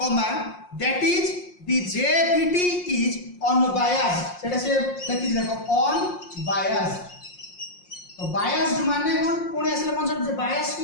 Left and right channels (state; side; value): late; right; 5.6 ms